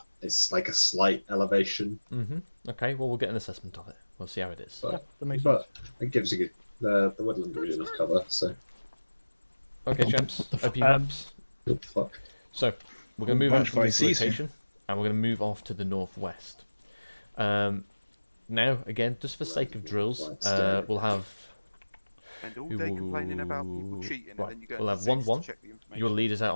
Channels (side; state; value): both; inverted; correlation -1.00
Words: It's like a slight elevation. Mm-hmm. Okay, well, we'll get an assessment of it. We'll see how it is. But, that makes but it gives you the woodland gives you enough cover. So Okay, champs. OP maps. Fuck. So we're going to move out from this season. location, and we're going to move off to the northwest. Now, again, just for sake of drills, we'll have. And all day complaining about people cheating, Right. and then you go We'll to have 6 to 1-1. check the information. Your leader's